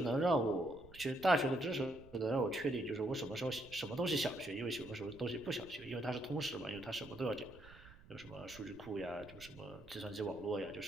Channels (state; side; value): noise; right; rumble, 20 dB below the sound